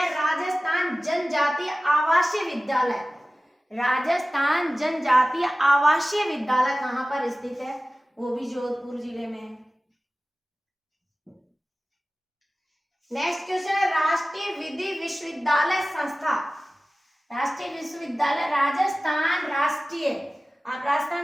राजस्थान जनजातीय आवासीय विद्यालय, राजस्थान जनजातीय आवासीय विद्यालय कहाँ पर स्थित है? वो भी जोधपुर जिले में है। नेक्स्ट क्वेश्चन है, राष्ट्रीय विधि विश्वविद्यालय संस्था, राष्ट्रीय विश्वविद्यालय राजस्थान राष्ट्रीय, आप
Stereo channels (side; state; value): both; normal; correlation 0.96